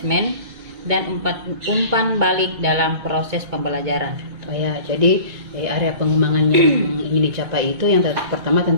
dan umpan balik dalam proses pembelajaran. Oh ya, jadi area pengembangan yang ingin dicapai itu yang pertama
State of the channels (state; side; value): late; left; 2.2 ms